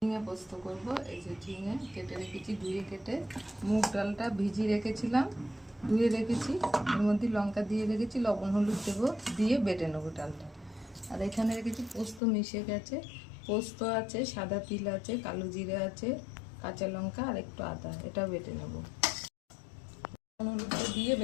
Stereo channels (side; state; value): right; drops out; at 12.2 s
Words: ঝিঙে পোস্ত করব। এই যে ঝিঙে কেটে রেখেছি, ধুয়ে কেটে। মুগ ডালটা ভিজিয়ে রেখেছিলাম, ধুয়ে রেখেছি। এর মধ্যে লঙ্কা দিয়ে রেখেছি, লবণ হলুদ দেবো, দিয়ে বেটে নেবো ডালটা। আর এখানে রেখেছি পোস্ত মিশে গেছে, পোস্ত আছে, সাদা তিল আছে, কালো জিরে আছে, কাঁচা লঙ্কা আর একটু আদা, এটাও বেটে নেবো। লবণ হলুদটা দিয়ে